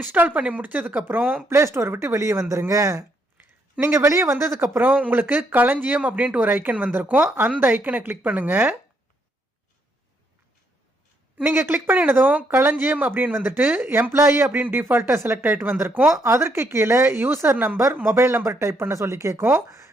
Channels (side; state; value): both; normal; correlation 0.74